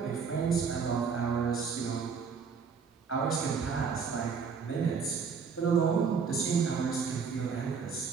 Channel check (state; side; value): quieter; left; 5.9 dB